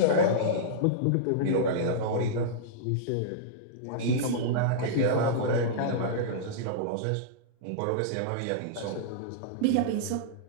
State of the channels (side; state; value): both; different; correlation -0.03